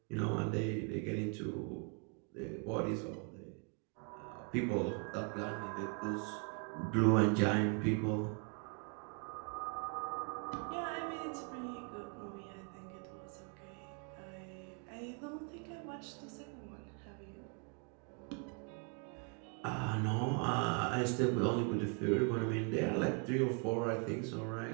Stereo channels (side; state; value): left; quieter; 35.4 dB